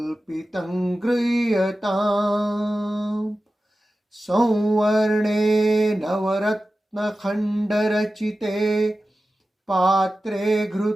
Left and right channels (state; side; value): normal; both; correlation 0.94